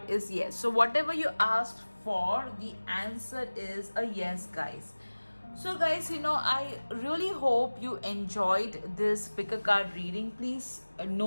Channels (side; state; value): both; inverted; correlation -1.00